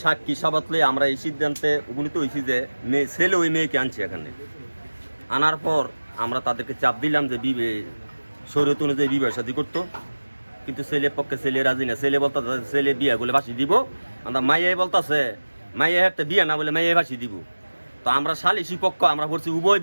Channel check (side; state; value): both; inverted; correlation -1.00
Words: সাক্ষী সাবাতলে আমরা এই সিদ্ধান্তে উপনীত হয়েছি যে ছেলে ওই মেয়েকে আনছে এখানে। আনার পর আমরা তাদেরকে চাপ দিলাম যে শরীয়ত অনুযায়ী বিবাহ শাদী করতো, কিন্তু ছেলের পক্ষে ছেলে রাজি না। ছেলে বলতে ছেলে বিয়া বলে ফাঁসি দিব, আমরা মাইয়াই বলতেছে মাইয়া একটা বিয়া না বলে মাইয়াই ফাঁসি দিব। তো আমরা সালিসি পক্ষ আমরা বলছি উভয়